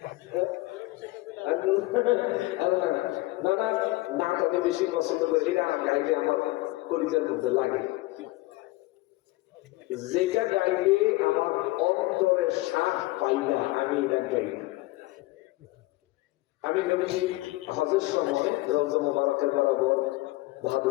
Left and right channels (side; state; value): right; quieter; 20.3 dB